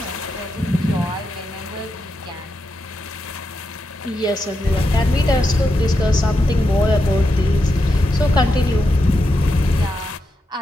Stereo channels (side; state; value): both; normal; correlation 0.86